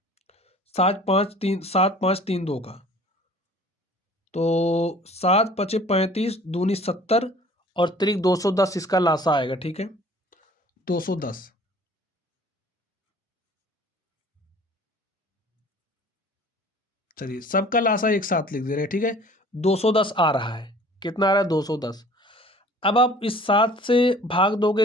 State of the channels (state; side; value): normal; both; correlation 0.49